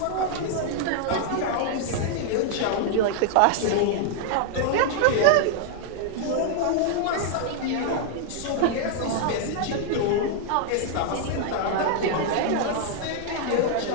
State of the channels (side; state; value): both; different; correlation 0.00